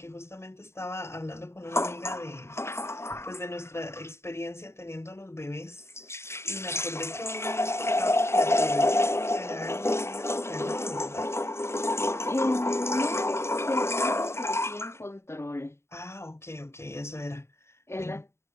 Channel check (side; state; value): right; late; 0.13 ms